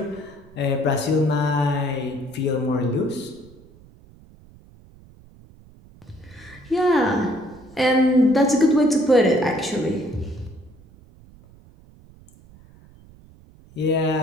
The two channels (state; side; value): noise; right; rumble, 25 dB below the sound